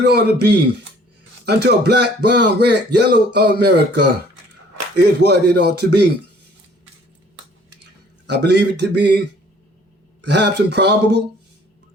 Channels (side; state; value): both; normal; correlation 0.56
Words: it ought to be, until black, brown, red, yellow America is what it ought to be. I believe it to be perhaps improbable,